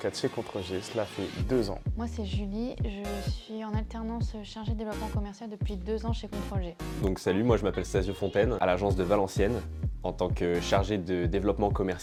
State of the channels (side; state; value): both; identical; correlation 1.00